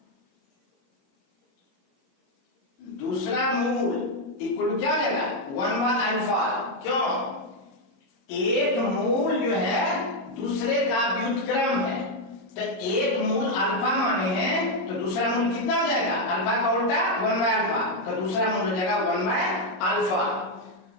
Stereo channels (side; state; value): right; late; 22 ms